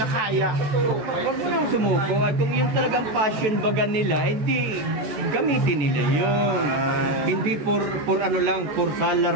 Huwag mo nang sumuko. At kung yung talagang passion baga nila, hindi gamitin nila yun. Hindi for ano lang, for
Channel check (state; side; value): late; left; 14 ms